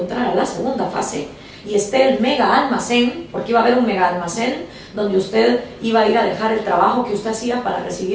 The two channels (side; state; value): both; identical; correlation 1.00